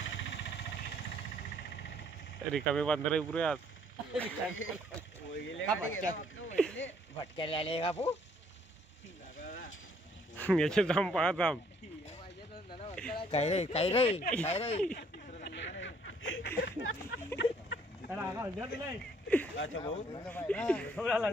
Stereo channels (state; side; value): normal; both; correlation 0.64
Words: रिकामे बांधर पुरे आज भटक्याला आले कापू याचे थांब पाहा थांब काय रे काय रे काय रे अच्छा भाऊ